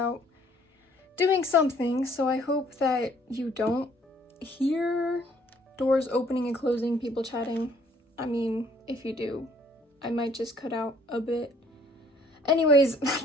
doing something, so I hope that you don't hear doors opening and closing, people chatting. I mean, if you do, I might just cut out a bit. Anyways,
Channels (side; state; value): both; normal; correlation 0.61